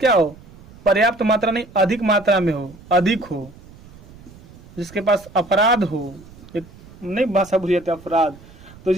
हो, पर्याप्त मात्रा नहीं, अधिक मात्रा में हो, अधिक हो, जिसके पास अपराध हो, एक नहीं भाषा भूल जाते, अपराध, तो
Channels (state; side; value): noise; right; rumble, 21 dB below the sound